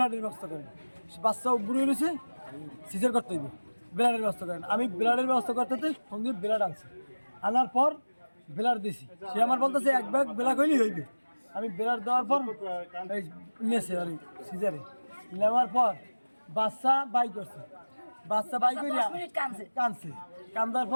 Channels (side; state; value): both; inverted; correlation -1.00